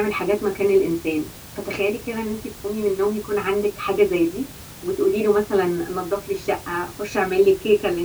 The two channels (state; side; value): identical; both; correlation 1.00